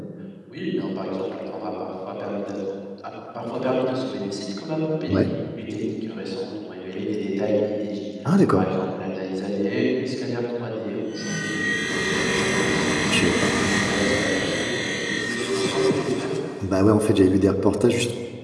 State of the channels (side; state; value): both; identical; correlation 1.00